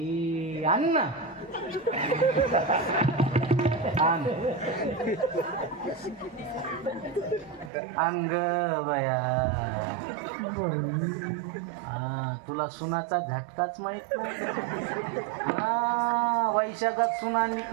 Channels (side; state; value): left; drops out; at 7.7 s